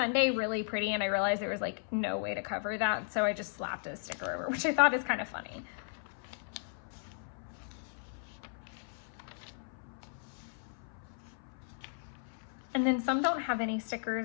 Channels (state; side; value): silent; right; 54 dB below the other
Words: really pretty and I realized there was like no way to cover that. So I just slapped a sticker over, which I thought is kind of funny. And then some don't have any